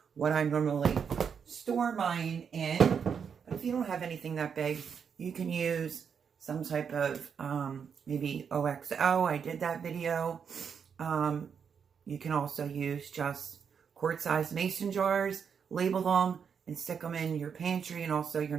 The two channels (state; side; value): quieter; left; 6.9 dB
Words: what I normally store mine in. But if you don't have anything that big, you can use some type of maybe OXO. I did that video. You can also use just quart-sized mason jars, label them, and stick them in your pantry and also your